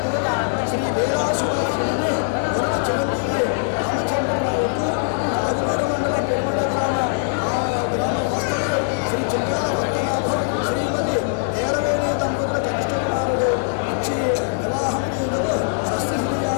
శ్రీమతి ఏరవేణి దంపతుల కనిష్ట కుమారుడు ఇచ్చి వివాహం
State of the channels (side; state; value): right; silent; digital silence